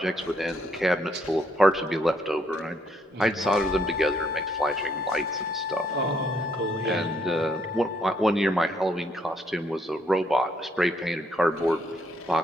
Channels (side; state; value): both; normal; correlation 0.70